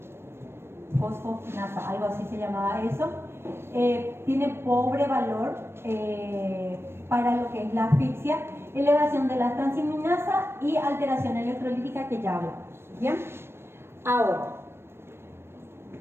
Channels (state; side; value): late; left; 0.12 ms